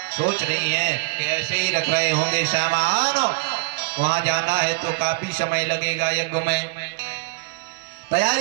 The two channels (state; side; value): quieter; left; 27.5 dB